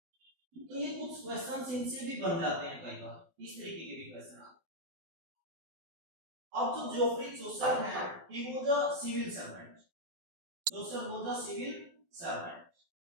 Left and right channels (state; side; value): late; left; 12 ms